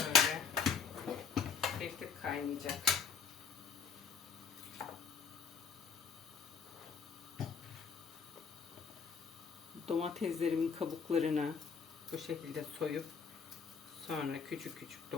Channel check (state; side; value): quieter; right; 6.4 dB